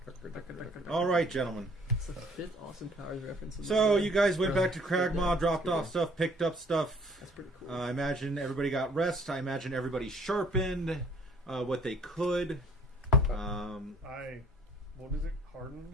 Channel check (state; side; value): normal; both; correlation 0.57